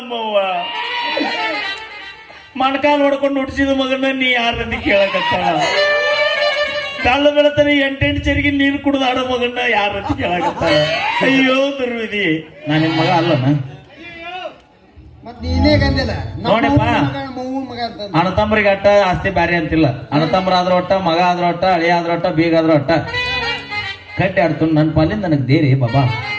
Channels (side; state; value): both; identical; correlation 1.00